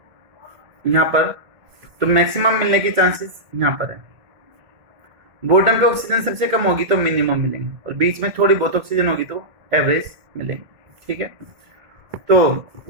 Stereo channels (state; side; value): late; left; 1.7 ms